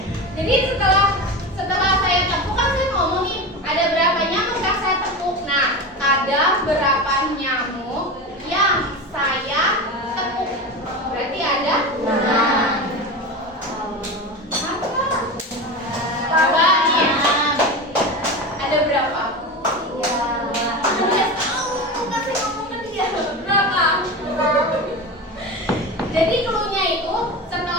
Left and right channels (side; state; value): both; normal; correlation 0.25